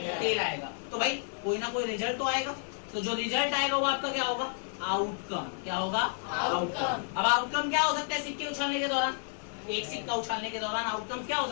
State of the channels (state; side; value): silent; right; 57 dB below the other